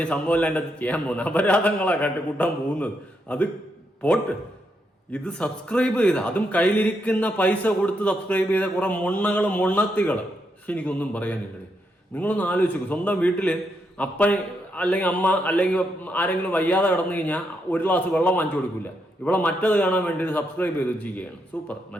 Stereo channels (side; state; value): both; normal; correlation 0.80